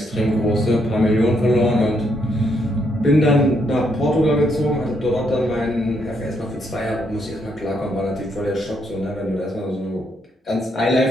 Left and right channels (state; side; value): normal; both; correlation 0.75